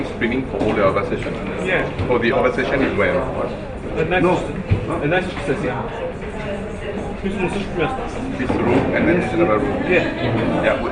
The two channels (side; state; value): both; identical; correlation 1.00